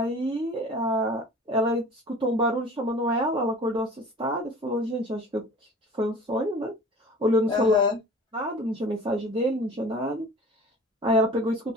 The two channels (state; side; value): normal; both; correlation 0.42